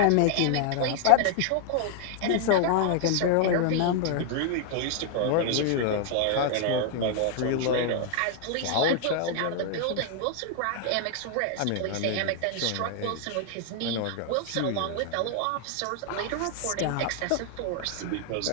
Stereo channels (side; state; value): both; different; correlation 0.00